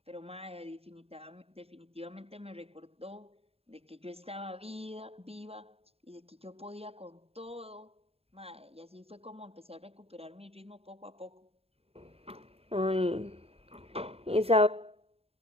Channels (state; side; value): late; left; 0.29 ms